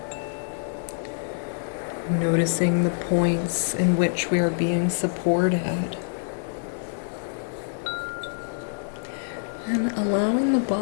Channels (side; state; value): right; silent; digital silence